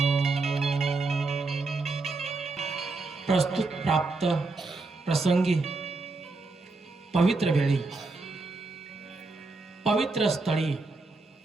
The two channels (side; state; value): left; quieter; 3.6 dB